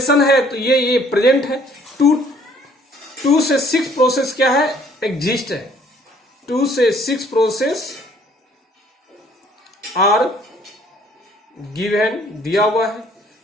है तो ये प्रेजेंट है। 2 से 6 प्रोसेस क्या है, एग्जिस्ट है। 2 से 6 प्रोसेस आर गिवन, दिया हुआ है।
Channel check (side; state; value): both; normal; correlation 0.60